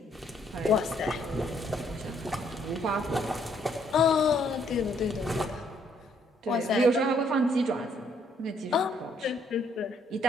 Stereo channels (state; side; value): normal; both; correlation 0.68